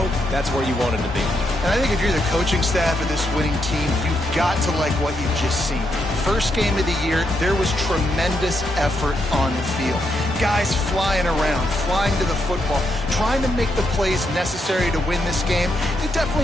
that's where you wanted to be. And I think if you're the coaching staff of this winning team, you've got to like what you've just seen. First game of the year, there was tremendous effort on the field. Guys flying around, flying to the football, trying to make the plays necessary to win this game. You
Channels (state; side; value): normal; both; correlation 0.80